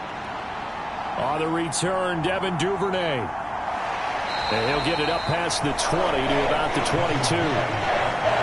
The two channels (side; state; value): both; identical; correlation 1.00